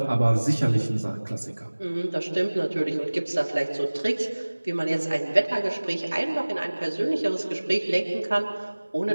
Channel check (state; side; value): inverted; both; correlation -1.00